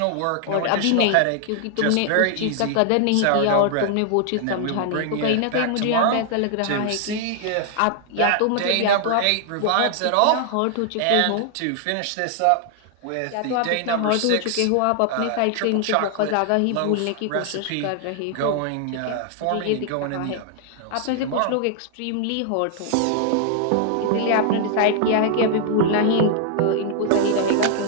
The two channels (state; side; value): different; both; correlation 0.00